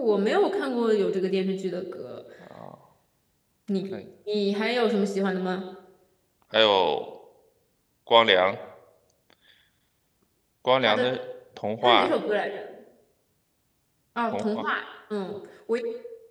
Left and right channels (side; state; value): both; identical; correlation 1.00